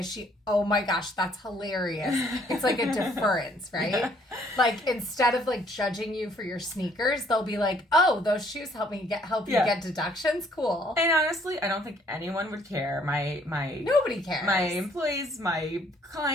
she? Oh my gosh, that's hilarious. It's like a deference, right? Yeah. Like, instead of like judging you for your sneakers, they'll be like, oh, those shoes help you get deductions. Cool. And honestly, I don't think anyone would care. Nobody cares. My employees, my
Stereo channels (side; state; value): both; normal; correlation 0.63